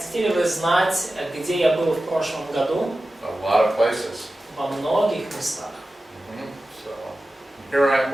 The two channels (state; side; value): normal; both; correlation 0.94